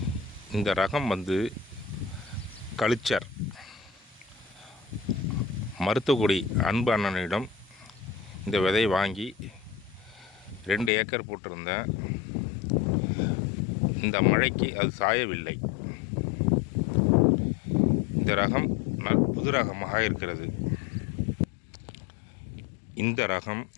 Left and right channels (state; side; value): drops out; right; at 10.9 s